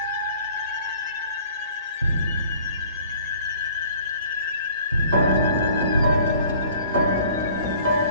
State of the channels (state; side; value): inverted; both; correlation -0.52